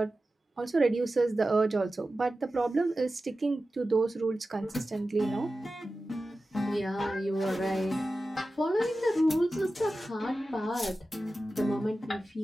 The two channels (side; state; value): both; normal; correlation 0.94